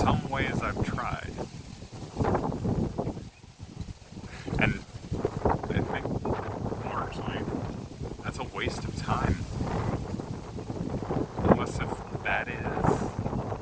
ways I've tried. And I think largely that's a waste of time. Unless if that is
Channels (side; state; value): both; identical; correlation 1.00